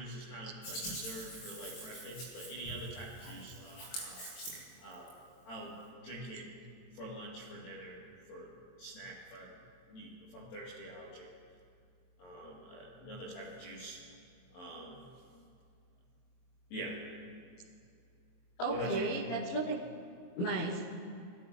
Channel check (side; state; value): right; late; 23 ms